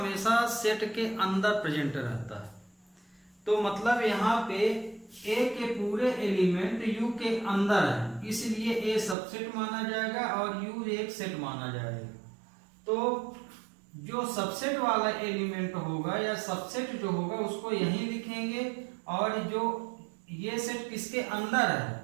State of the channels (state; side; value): drops out; left; at 9.2 s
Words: सेट के अंदर प्रेजेंट रहता है। तो मतलब यहाँ पे A के पूरे एलिमेंट U के अंदर है, इसलिए A सबसेट माना जाएगा और U एक सेट माना जाएगा। तो जो सबसेट वाला एलिमेंट होगा या सबसेट जो होगा उसको यहीं लिखेंगे, और जो ये सेट किसके अंदर